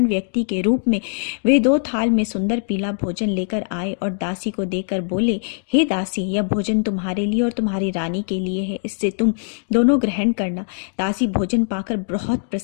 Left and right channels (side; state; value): right; silent; digital silence